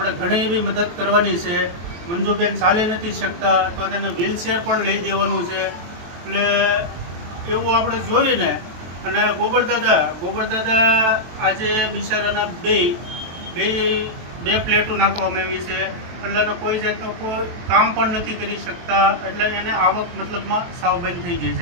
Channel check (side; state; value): left; late; 23 ms